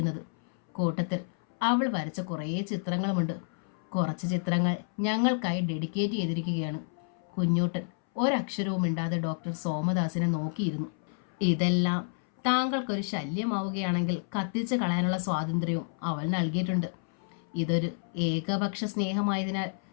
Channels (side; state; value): right; silent; 58 dB below the other